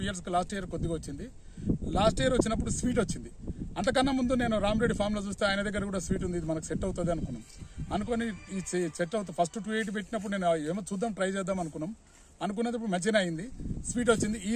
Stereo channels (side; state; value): both; identical; correlation 1.00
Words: years లాస్ట్ ఇయర్ కొద్దిగా వచ్చింది. లాస్ట్ ఇయర్ వచ్చినప్పుడు స్వీట్ వచ్చింది. అంతకన్నా ముందు నేను రామరెడ్డి ఫామ్లో చూస్తే ఆయన దగ్గర కూడా స్వీట్ ఉంది, ఇది మనకు సెట్ అవుతుంది అనుకుని ఈ సెట్ అవుతుంది. ఫస్ట్ 280 పెట్టినప్పుడు నేను ఏమో చూద్దాం, ట్రై చేద్దాం అనుకున్నప్పుడు మంచిగా అయింది. స్వీట్ వచ్చింది.